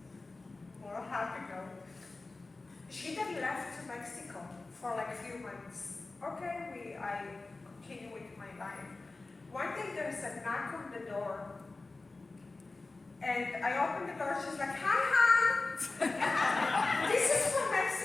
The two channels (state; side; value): quieter; right; 3.4 dB